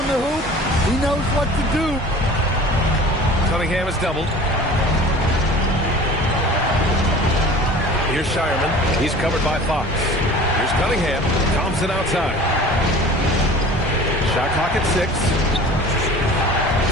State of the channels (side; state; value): both; normal; correlation 0.42